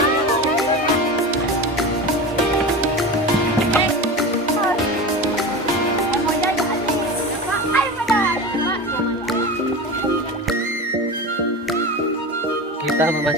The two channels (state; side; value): normal; both; correlation 0.27